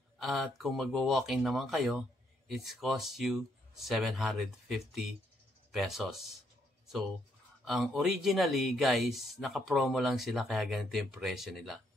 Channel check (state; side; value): normal; both; correlation 0.73